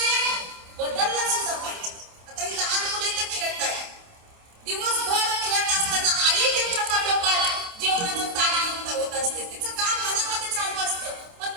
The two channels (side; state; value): left; late; 28 ms